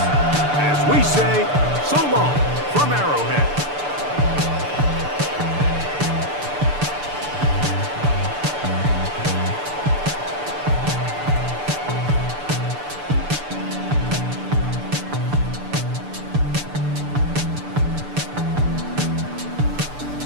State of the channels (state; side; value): late; left; 6.8 ms